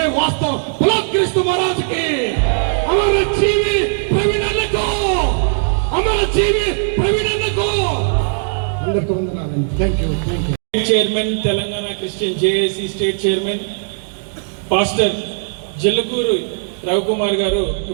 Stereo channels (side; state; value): left; silent; digital silence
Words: క్రీస్తు మహారాజుకి అమర జీవి ప్రవీణ్ అన్నకు. అందరికీ వందనాలు. Thank you. Chairman Telangana christian JAC state chairman pastor Jillakuru Ravikumar garu